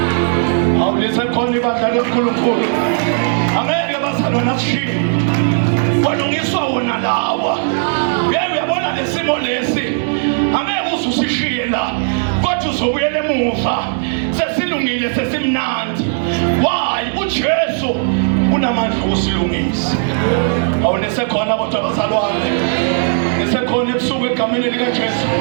Awulise khona ibandla loNkulunkulu. Angeke bazalwana akushiye. Walungiswa wona lawa. Uyabona lesimo lesi. Angeke uzusishiye la. Kodwa uzobuyela emuva. Sesilungile sesimnandi. Why? uJesu unamandla okusilungisa. Awunesekhona kodwa bazalwane. Nesekhona ebusuku egameni likaJesu.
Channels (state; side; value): silent; left; digital silence